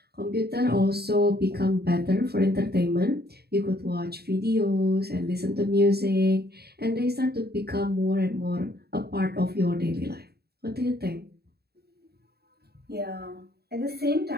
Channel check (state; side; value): late; left; 0.46 ms